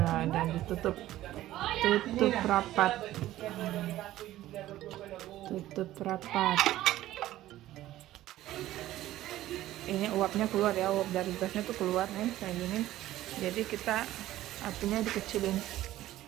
dan ditutup rapat. Tutup rapat. Ini uapnya keluar ya, uap dari gasnya tuh keluar nih kayak gini. Jadi kita apinya dikecilin,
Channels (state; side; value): quieter; left; 14.7 dB